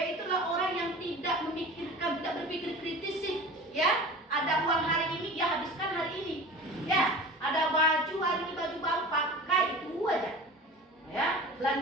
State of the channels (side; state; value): both; normal; correlation 0.36